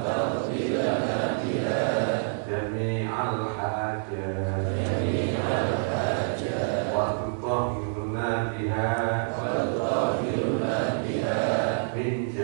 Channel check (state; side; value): silent; left; digital silence